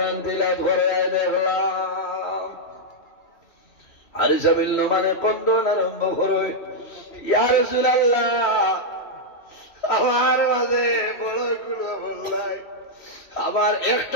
তিলাওয়াত করে দেখলাম। হারিসা বিন নুমানে কন্দন আরম্ভ করে, ইয়া রাসূলুল্লাহ, আমার মাঝে বড় কোনো আমল নাই, আমার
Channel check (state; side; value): late; right; 3.1 ms